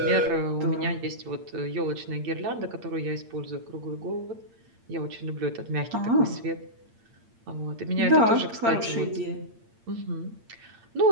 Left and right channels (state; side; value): late; left; 8.7 ms